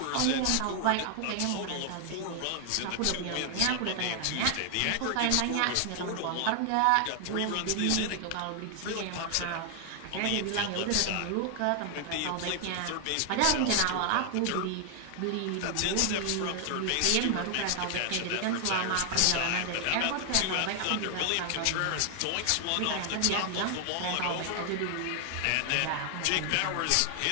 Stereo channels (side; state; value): both; different; correlation 0.00